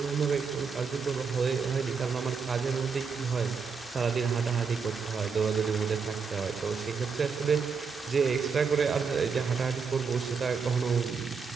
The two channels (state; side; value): quieter; left; 5.5 dB